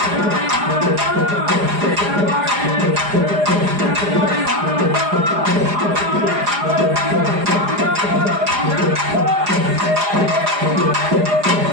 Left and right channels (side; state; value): left; late; 4.9 ms